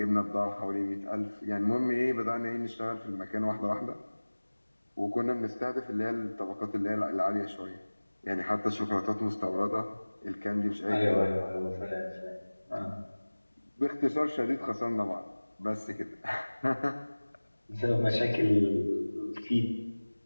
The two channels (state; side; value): inverted; both; correlation -1.00